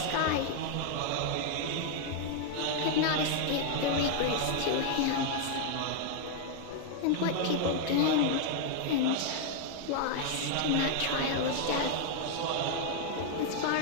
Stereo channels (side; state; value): both; different; correlation 0.00